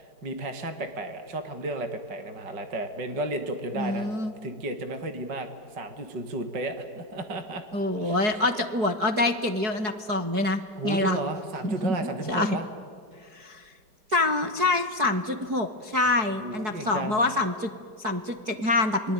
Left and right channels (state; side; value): late; left; 4.7 ms